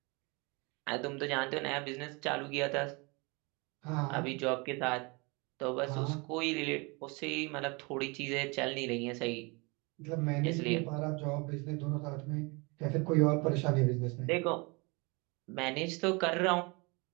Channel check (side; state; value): left; quieter; 28.5 dB